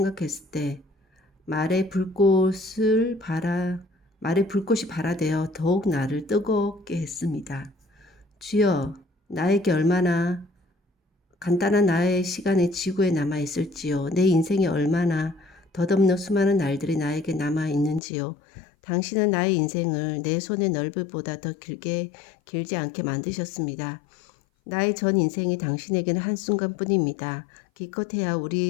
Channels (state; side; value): drops out; right; at 18.0 s